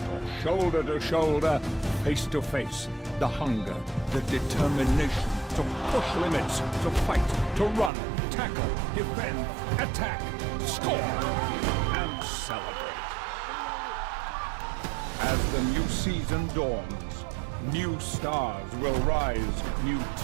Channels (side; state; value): left; drops out; at 7.9 s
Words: shoulder to shoulder, face to face. The hunger, the determination to push limits, to fight, to run, tackle, defend, attack, score, and celebrate. As the new season dawns, new stars will rise, new